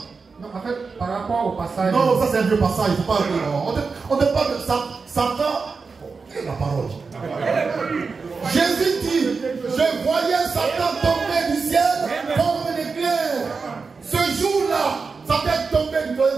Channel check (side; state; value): left; quieter; 4.7 dB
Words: Non, en fait, par rapport au passage. Non, ça c'est un vieux passage. Il faut pas. On ne parle de Satan. Quelle est la parole? Jésus dit, je voyais Satan tomber du ciel comme un éclair. Ce jour-là, Satan est tombé du